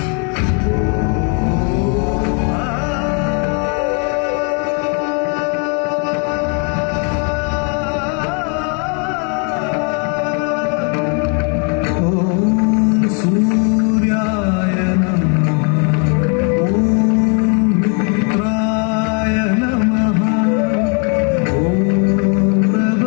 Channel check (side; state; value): right; quieter; 38.2 dB